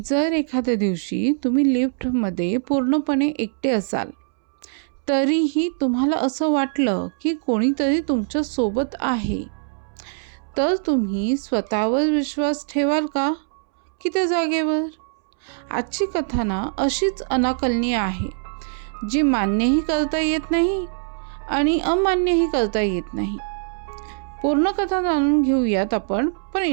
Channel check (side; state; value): left; silent; 64 dB below the other